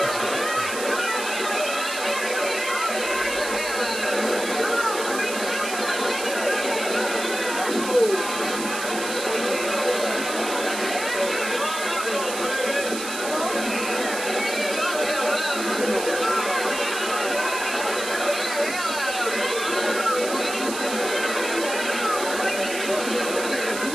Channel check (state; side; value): noise; right; hiss, 7 dB below the sound